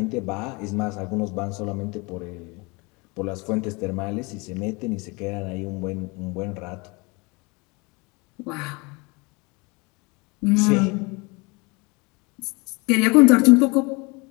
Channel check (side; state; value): right; quieter; 27.7 dB